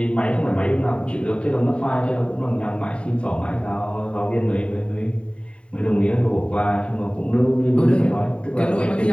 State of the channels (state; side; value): late; right; 0.058 ms